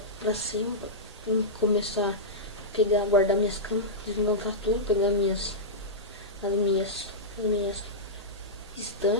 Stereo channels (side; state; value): both; normal; correlation -0.12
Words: pra cima. Pra começar a pegar, guardar minhas camas. Desmontar tudo. Pegar as minhas